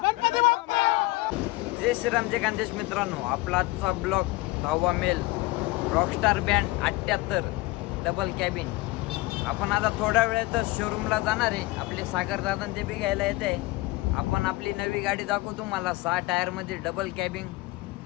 गणपती बाप्पा। जय श्रीराम जय खानदेश मित्रांनो, आपला आजचा ब्लॉग 10वा male rockstar band 78 double cabin. आपण आता थोड्या वेळातच शोरूमला जाणार आहे। आपले सागर दादा ते बी घ्यायला येते। आपण आपली नवी गाडी दाखवू तुम्हाला 6 टायर मध्ये डबल कॅबिन।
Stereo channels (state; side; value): quieter; right; 21.0 dB